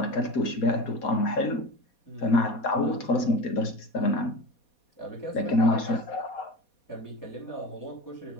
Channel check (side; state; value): right; late; 4.2 ms